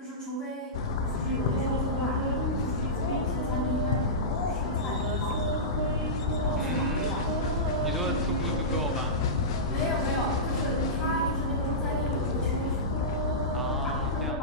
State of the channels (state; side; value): normal; both; correlation -0.16